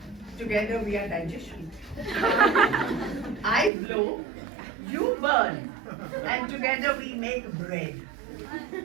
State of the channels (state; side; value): drops out; left; at 3.7 s